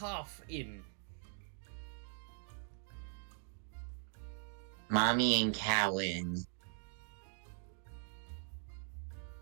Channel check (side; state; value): left; silent; 50 dB below the other